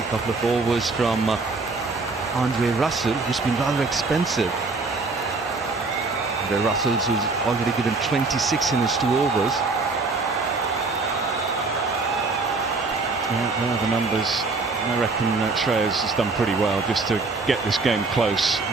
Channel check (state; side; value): quieter; left; 3.8 dB